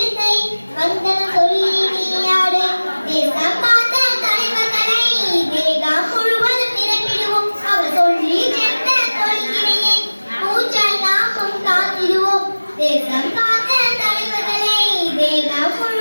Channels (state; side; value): inverted; both; correlation -1.00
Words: வந்தனம் சொல்லி நீ ஆடு. தேசம் காத்த தலைவர்களை தேகம் முழுவதும் நிரப்பிடுவோம். அவர் சொல்லி சென்ற கொள்கையை மூச்சால் நாமும் காத்திடுவோம். தேசம் காத்த தலைவர்களை தேகம்